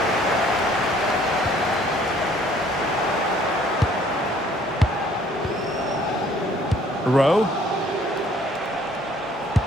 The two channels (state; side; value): normal; both; correlation 0.59